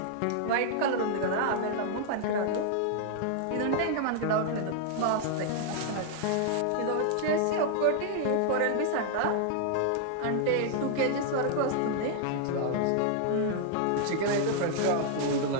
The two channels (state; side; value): different; both; correlation -0.01